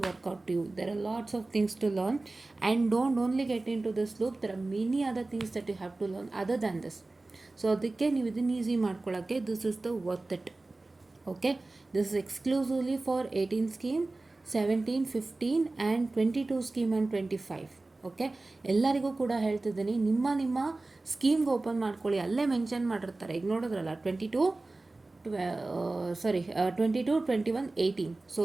work out to you. There are lots of things to learn and don't only get into this loop, there are many other things that you have to learn other than this. So ಅದಕ್ಕೆ ನೀವು ಇದನ್ನು easy ಮಾಡ್ಕೊಳ್ಳೋಕ್ಕೆ this is the worth it. Okay, this is exclusively for 18 scheme, 17, 15 and 22 scheme and 25. Okay, ಎಲ್ಲರಿಗೂ ಕೂಡ ಹೇಳ್ತಿದ್ದೀನಿ, ನಿಮ್ಮ ಸ್ಕೀಮ್ಗೆ open ಮಾಡ್ಕೊಳ್ಳಿ. ಅಲ್ಲೇ ಮೆನ್ಷನ್ ಮಾಡಿರ್ತಾರೆ. ಈಗ ನೋಡಿದ್ರಲ್ಲ 22, 21, 18. So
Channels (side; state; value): left; quieter; 3.2 dB